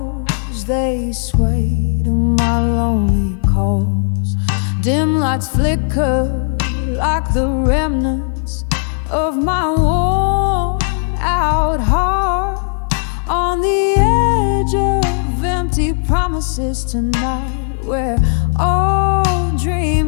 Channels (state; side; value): silent; right; digital silence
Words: they sway to my lonely calls. Dim lights flicker like the remnants of my worn out heart, on the edge of empty promises tonight, where all